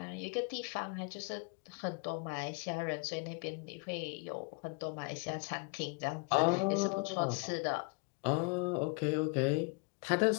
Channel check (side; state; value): right; quieter; 31.9 dB